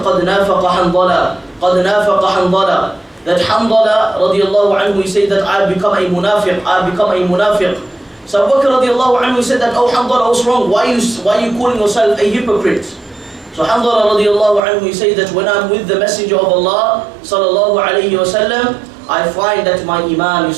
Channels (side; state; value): left; drops out; at 14.6 s